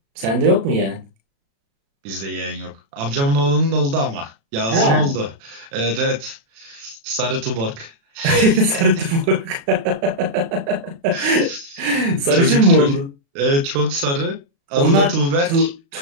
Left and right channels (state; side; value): late; left; 36 ms